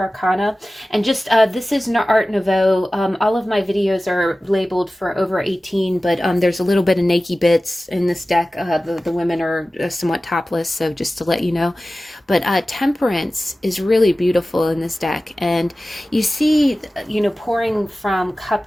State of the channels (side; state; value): both; normal; correlation 0.96